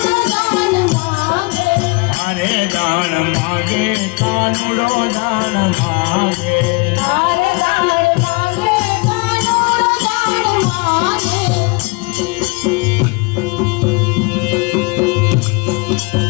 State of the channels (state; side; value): quieter; right; 28.7 dB